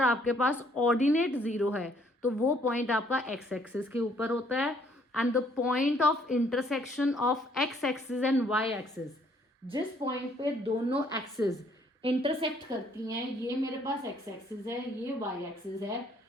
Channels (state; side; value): normal; both; correlation 0.64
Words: आपके पास ऑर्डिनेट 0 है तो वो पॉइंट आपका एक्स एक्सिस के ऊपर होता है. And the point of intersection of x axis and Y axis, जिस पॉइंट पे दोनों एक्सिस इंटरसेक्ट करती हैं, ये मेरे पास एक्स एक्सिस है, ये वाई एक्सिस है,